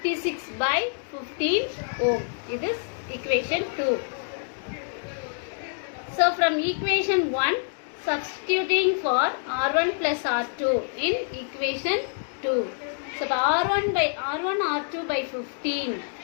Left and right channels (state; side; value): silent; right; digital silence